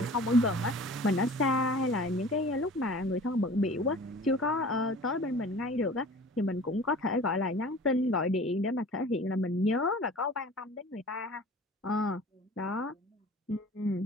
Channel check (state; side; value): normal; both; correlation 0.43